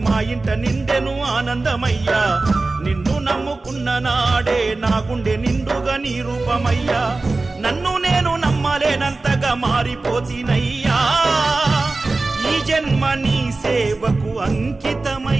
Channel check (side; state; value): left; quieter; 3.4 dB